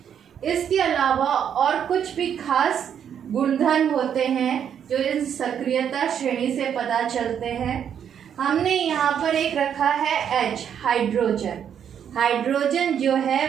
इसके अलावा और कुछ भी खास गुणधर्म होते हैं जो इस सक्रियता श्रेणी से पता चलते हैं। हमने यहाँ पर एक रखा है H, हाइड्रोजन। हाइड्रोजन जो है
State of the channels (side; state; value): left; quieter; 8.6 dB